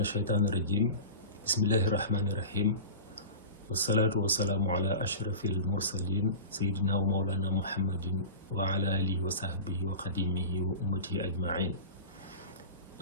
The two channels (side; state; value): both; inverted; correlation -0.31